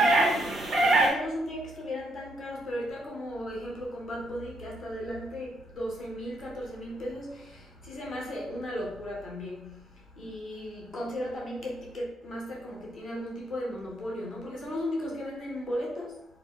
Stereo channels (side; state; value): both; normal; correlation 0.76